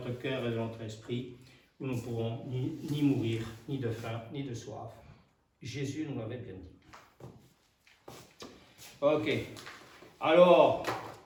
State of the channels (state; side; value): identical; both; correlation 1.00